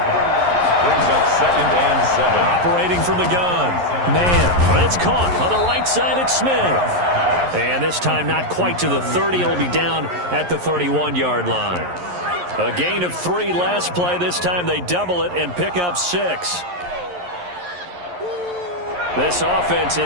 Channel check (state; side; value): late; left; 11 ms